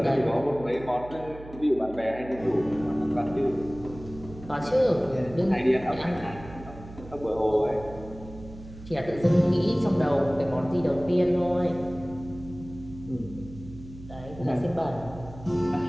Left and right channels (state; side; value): noise; right; hum, 16 dB below the sound